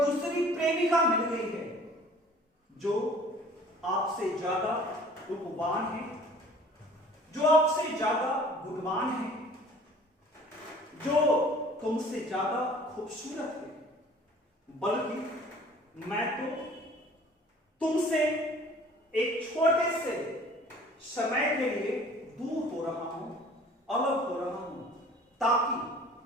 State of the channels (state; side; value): normal; both; correlation 0.50